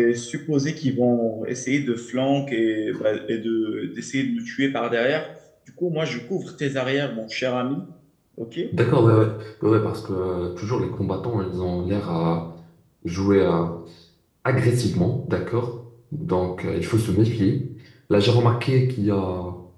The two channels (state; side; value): identical; both; correlation 1.00